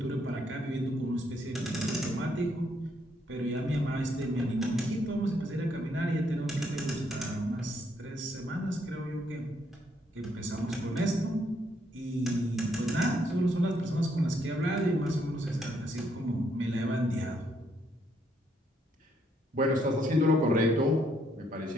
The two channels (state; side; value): normal; both; correlation 0.72